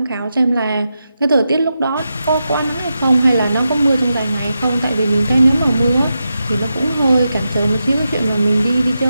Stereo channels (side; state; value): both; inverted; correlation -0.88